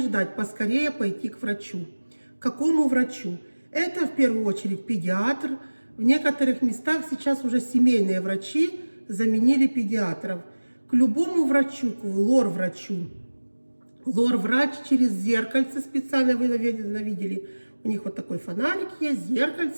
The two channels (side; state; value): both; inverted; correlation -1.00